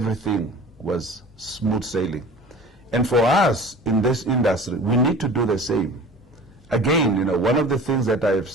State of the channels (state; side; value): normal; both; correlation 0.41